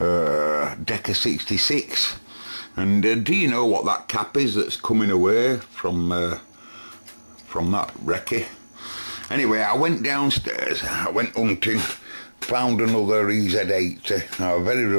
66? And do you know what that cap is that's coming away from that recce? Anyway, I went downstairs, I went hunting, found another EZ80. I was very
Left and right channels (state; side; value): inverted; both; correlation -1.00